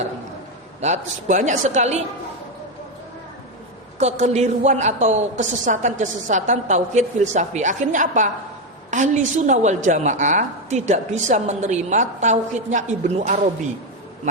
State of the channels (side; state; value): both; normal; correlation 0.08